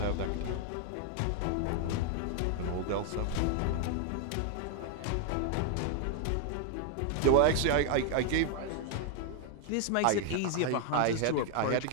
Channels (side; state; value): both; different; correlation 0.00